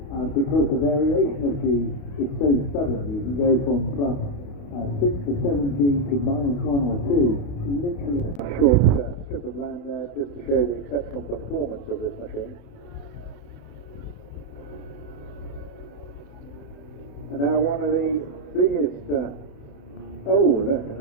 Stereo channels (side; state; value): right; late; 28 ms